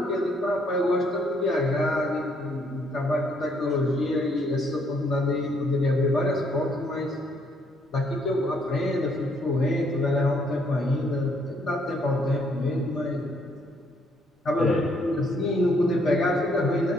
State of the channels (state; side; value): normal; both; correlation 0.69